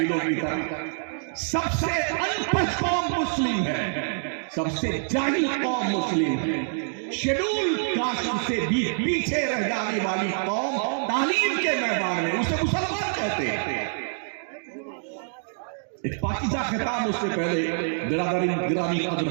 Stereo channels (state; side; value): silent; left; digital silence